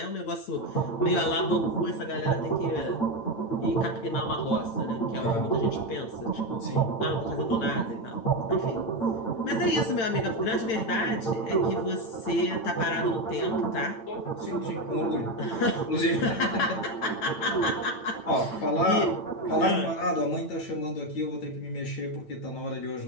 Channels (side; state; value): right; late; 8.9 ms